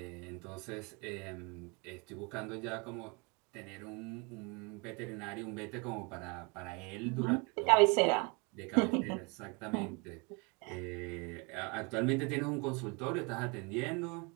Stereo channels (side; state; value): left; quieter; 31.1 dB